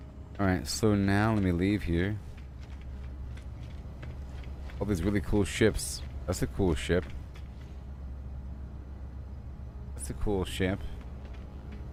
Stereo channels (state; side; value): identical; both; correlation 1.00